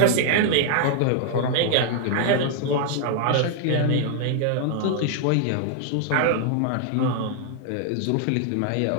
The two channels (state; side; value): different; both; correlation 0.00